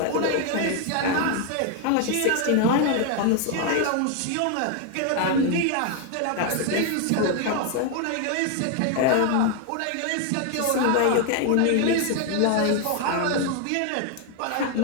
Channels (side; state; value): both; different; correlation 0.01